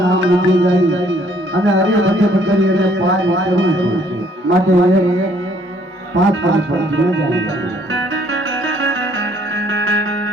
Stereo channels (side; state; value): both; normal; correlation 0.63